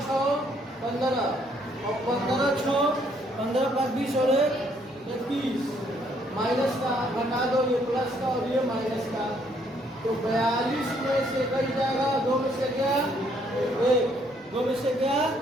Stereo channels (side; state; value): both; normal; correlation 0.68